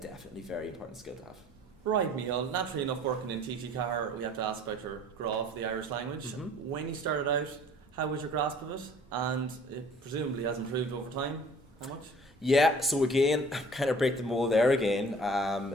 very important skill to have. Right, Mícheál. Naturally enough, working in TG4, we have to ask about your graph, the Irish language. Mm-hmm. When you started out, how was your grasp of it? And it presumably has improved over time. How much? Yeah, so again, kind of break the mold there again,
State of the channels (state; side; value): normal; both; correlation 0.51